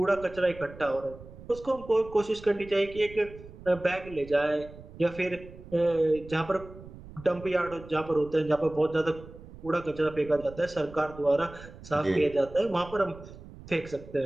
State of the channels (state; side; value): noise; right; rumble, 17 dB below the sound